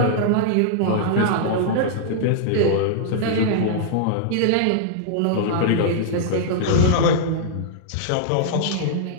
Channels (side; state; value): both; different; correlation -0.01